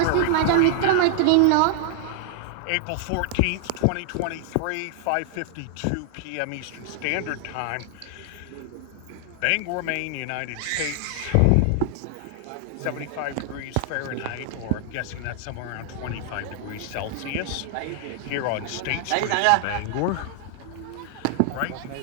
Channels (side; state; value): both; different; correlation -0.01